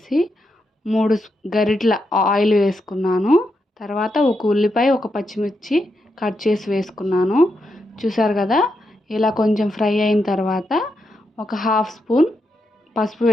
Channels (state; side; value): normal; both; correlation 0.84